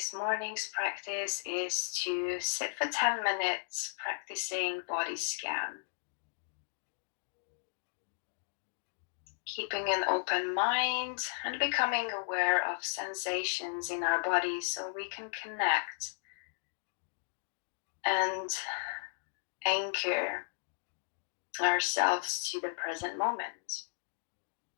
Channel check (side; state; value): right; silent; digital silence